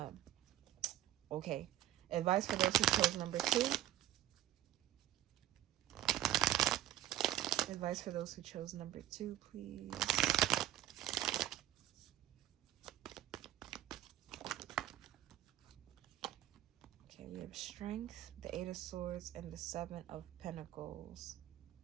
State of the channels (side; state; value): left; quieter; 13.1 dB